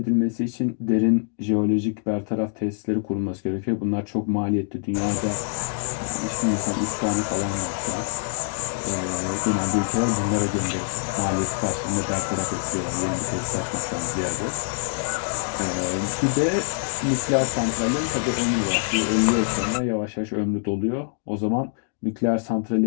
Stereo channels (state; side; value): silent; right; digital silence